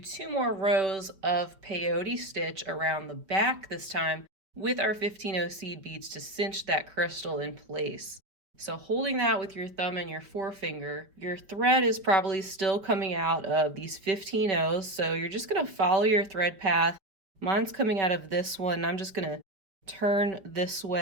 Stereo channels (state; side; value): late; left; 5.1 ms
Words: more rows of peyote stitch around the back this time with our 15-0 seed beads to cinch that crystal in place. So holding that with your thumb and your forefinger, your thread is probably still coming out of these 15-0s, so you're just going to follow your thread path. Mine's coming out of this one. I'm just going to turn this